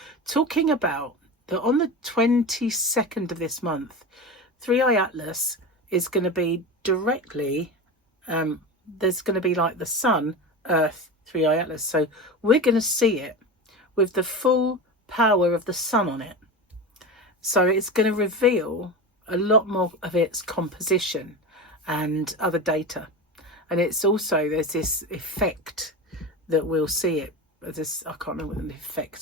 talking about that on the 22nd of this month, Three Eye Atlas is going to be directly, there's going to be like the sun, Earth, Three Eye Atlas. So we're going to see it with the full power of the sun on it. So it's going to reveal a lot more of its composition and other data. And it's also, there's this effect that we'll see it. This, I can't remember what the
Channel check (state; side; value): normal; both; correlation 0.26